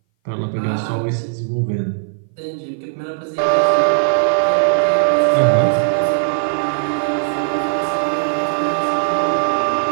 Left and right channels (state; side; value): silent; left; 60 dB below the other